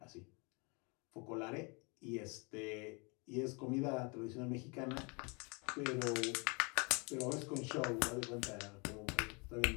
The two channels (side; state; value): right; quieter; 31.2 dB